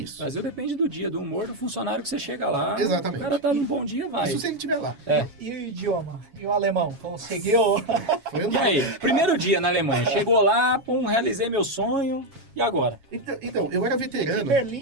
Brasil depende do dia, do humor do funcionário que você chega lá. Exatamente. O cara tá num bom dia, vai. Isso se ele estiver lá. E o idioma? E o alemão? Conseguiu? Foi E aí? Primeiro dia na Alemanha. Chegou lá, realizei meu sonho. E agora? Então, eu era veterano. E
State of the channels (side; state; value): left; late; 7.3 ms